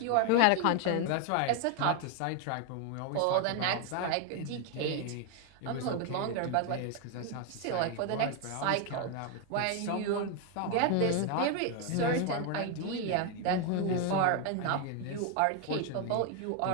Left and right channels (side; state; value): both; different; correlation 0.01